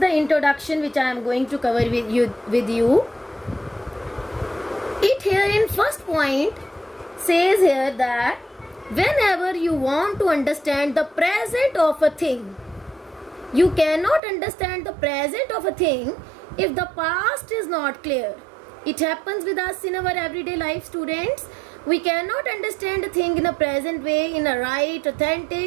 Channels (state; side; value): drops out; left; at 14.2 s